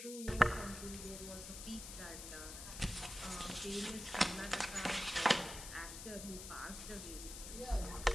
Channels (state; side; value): noise; left; hiss, 9 dB below the sound